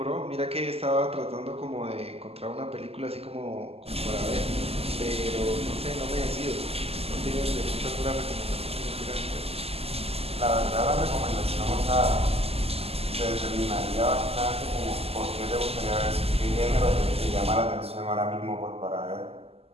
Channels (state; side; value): late; left; 0.29 ms